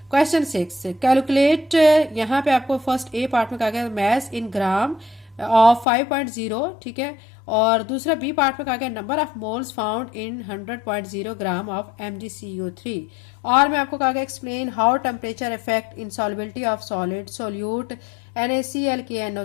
क्वेश्चन 6 कैलकुलेट, यहाँ पे आपको फर्स्ट ए पार्ट में कहा गया मैस इन ग्राम ऑफ 5.0, ठीक है, और दूसरा बी पार्ट में कहा गया number of moles found in 100.0 gram of MgCO3। और मैं आपको कहा गया explain how temperature effect in solubility of solid solute NaCl,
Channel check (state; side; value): drops out; right; at 5.9 s